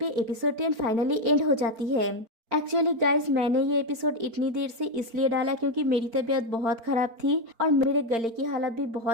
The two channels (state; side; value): late; left; 4.4 ms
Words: एपिसोड 10 फाइनली एंड हो जाती है। एक्चुअली गाइज, मैंने ये एपिसोड इतनी देर से इसलिए डाला क्योंकि मेरी तबीयत बहुत खराब थी और मेरे गले की हालत भी